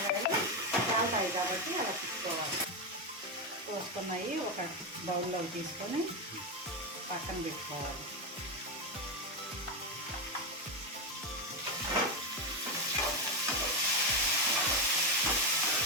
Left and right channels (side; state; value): both; normal; correlation 0.09